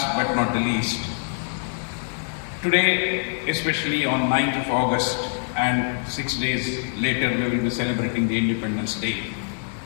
but not the least, today, especially on 9th of August, and 6 days later we will be celebrating the Independence Day.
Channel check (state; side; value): silent; right; 60 dB below the other